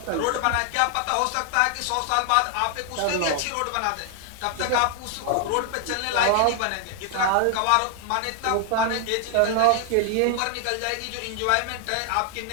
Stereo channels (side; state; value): both; different; correlation 0.00